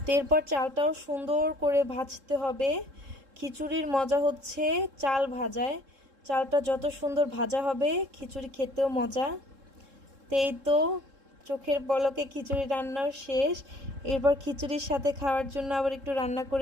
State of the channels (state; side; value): late; left; 3.7 ms